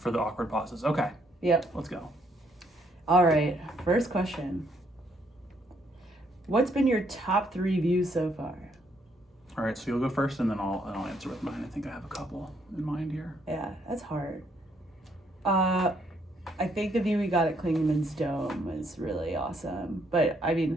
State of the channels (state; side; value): normal; both; correlation 0.71